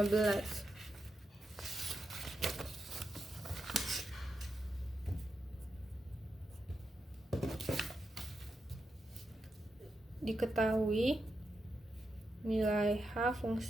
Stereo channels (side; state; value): both; normal; correlation 0.86